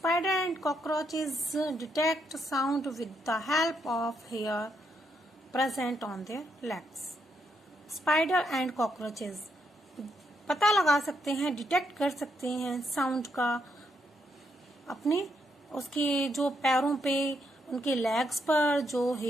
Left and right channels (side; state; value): both; normal; correlation 0.77